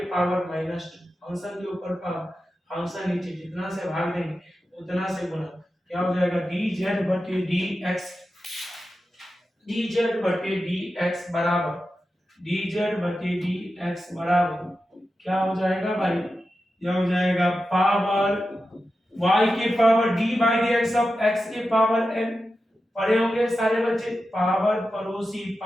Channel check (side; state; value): both; normal; correlation 0.91